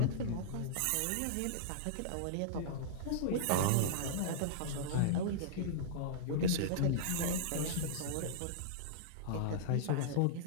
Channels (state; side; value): different; both; correlation -0.02